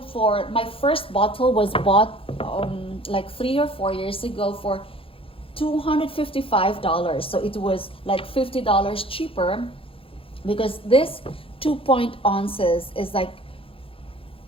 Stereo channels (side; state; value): right; late; 0.27 ms